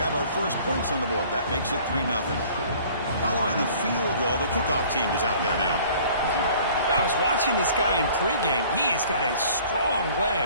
our first points on the board. That makes it 3-0. Following the field goal, the kickoff team is out there now. I was watching this guy in pregame. He has got a strong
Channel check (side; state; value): both; inverted; correlation -0.51